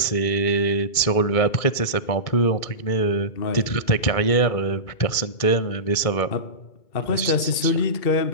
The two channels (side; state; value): right; late; 2.2 ms